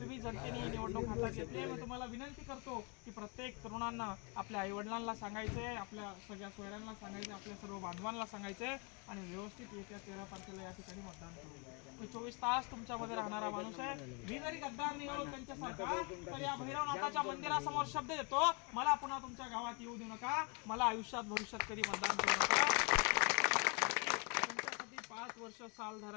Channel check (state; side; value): quieter; right; 32.2 dB